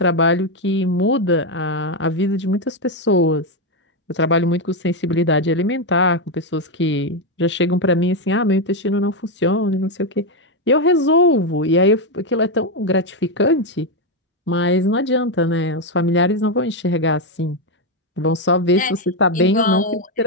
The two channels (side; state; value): both; normal; correlation 0.05